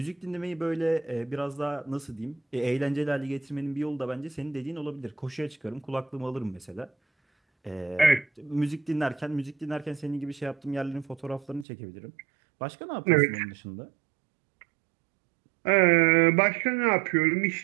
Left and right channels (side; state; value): left; drops out; at 11.7 s